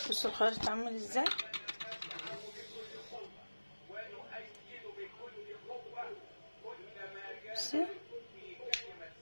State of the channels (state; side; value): inverted; both; correlation -1.00